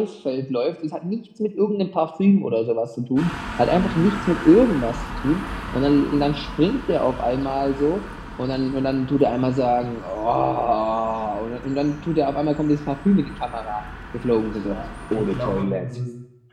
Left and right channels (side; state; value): both; identical; correlation 1.00